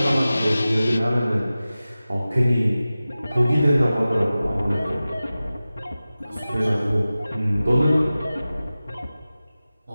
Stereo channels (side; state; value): both; inverted; correlation -0.96